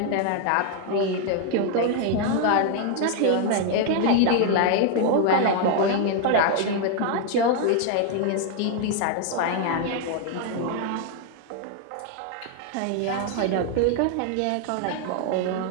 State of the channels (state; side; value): different; both; correlation 0.00